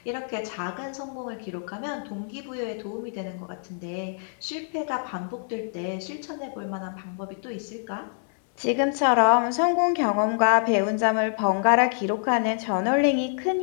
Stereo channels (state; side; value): silent; right; digital silence